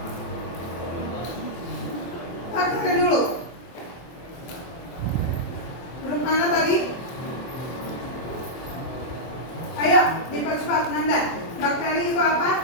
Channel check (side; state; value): right; late; 24 ms